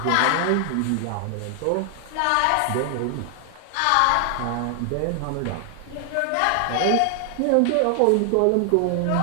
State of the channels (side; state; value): both; different; correlation 0.00